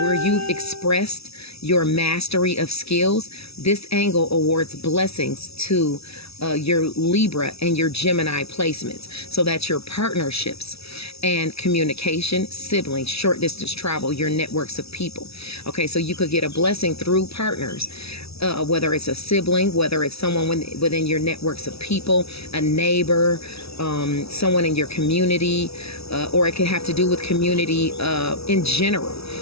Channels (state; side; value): late; right; 0.78 ms